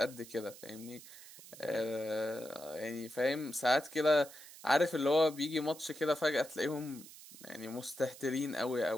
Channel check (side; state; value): right; noise; hiss, 17 dB below the sound